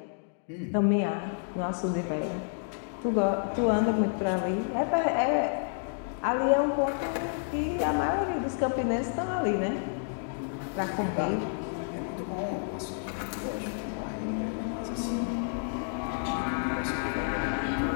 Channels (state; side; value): silent; right; digital silence